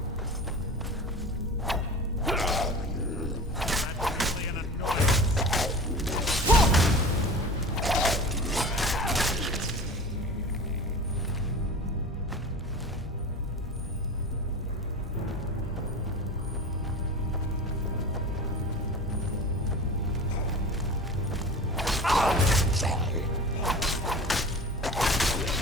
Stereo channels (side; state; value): both; normal; correlation 0.35